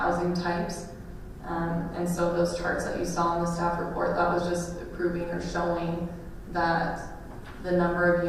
types. And so those charts that you saw in the staff report, that was just proving or showing that the number of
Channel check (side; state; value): both; identical; correlation 1.00